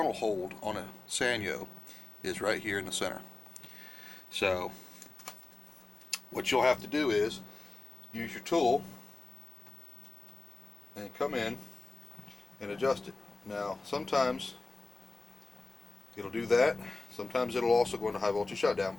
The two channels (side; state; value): right; quieter; 3.3 dB